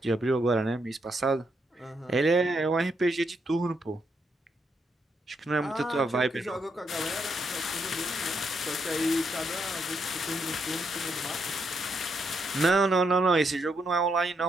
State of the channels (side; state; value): both; normal; correlation 0.78